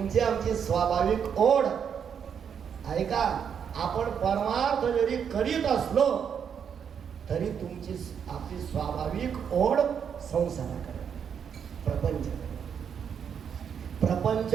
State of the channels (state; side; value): quieter; left; 7.6 dB